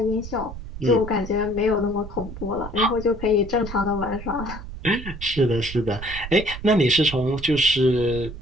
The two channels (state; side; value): noise; right; rumble, 11 dB below the sound